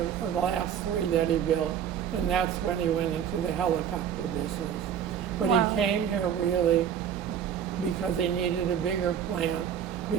last 3 that he built, and that's when he went into the helicopter business. But wow. He came here really because he needed a bigger plant,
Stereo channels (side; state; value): left; quieter; 8.8 dB